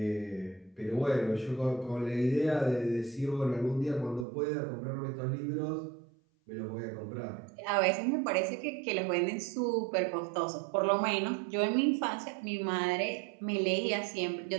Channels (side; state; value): left; drops out; at 4.2 s